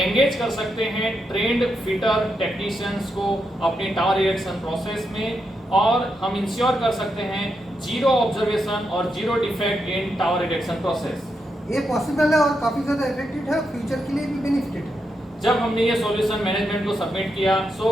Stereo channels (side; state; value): both; normal; correlation 0.83